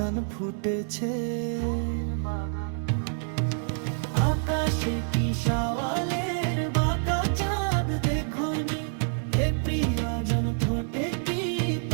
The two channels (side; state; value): left; silent; digital silence